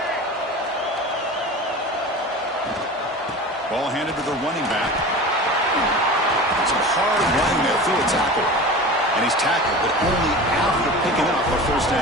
Ball handed to the running back. Some hard running there through a tackle. And he's tackled, but only after picking up a first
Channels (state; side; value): normal; both; correlation 0.34